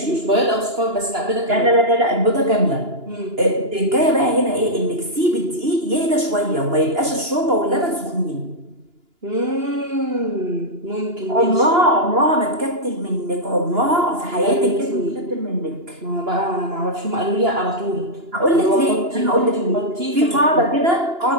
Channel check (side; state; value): left; late; 2.9 ms